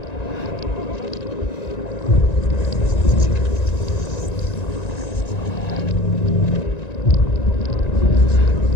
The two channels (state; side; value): late; right; 1.9 ms